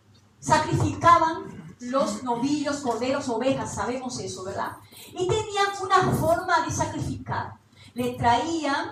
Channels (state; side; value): identical; both; correlation 1.00